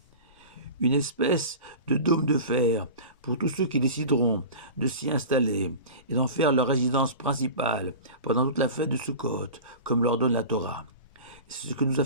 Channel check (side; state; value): both; inverted; correlation -0.34